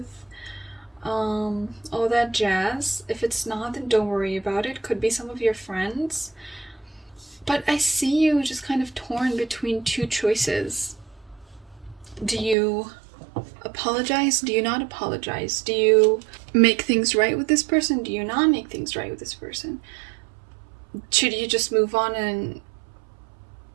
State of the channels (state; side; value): drops out; left; at 12.6 s